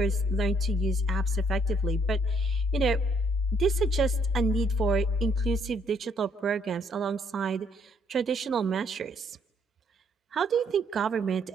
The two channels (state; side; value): normal; both; correlation 0.68